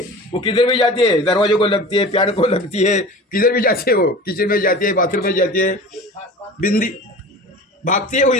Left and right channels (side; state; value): both; normal; correlation 0.37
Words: वो किधर भी जाती है, दरवाजे को लगती है, प्यार को लगती है, किधर भी जाती है, वो किचन में जाती है, बाथरूम में जाती है, बिंदी भागती है वो